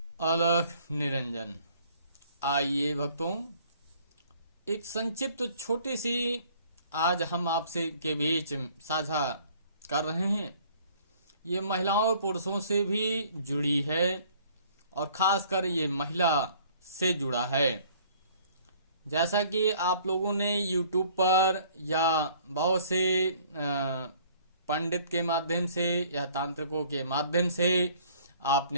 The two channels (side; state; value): both; inverted; correlation -0.56